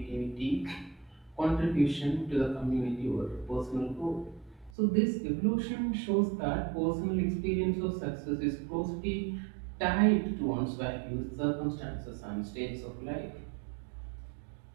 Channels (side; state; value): left; drops out; at 4.7 s